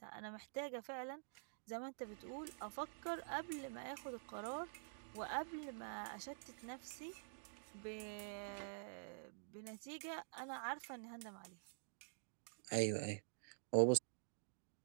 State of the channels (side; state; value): left; silent; digital silence